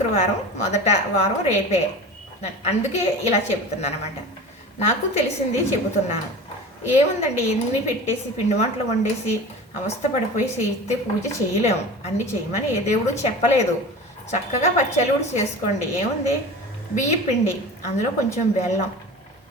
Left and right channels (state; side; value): normal; both; correlation 0.35